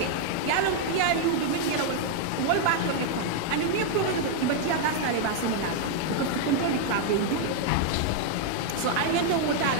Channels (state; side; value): different; both; correlation 0.00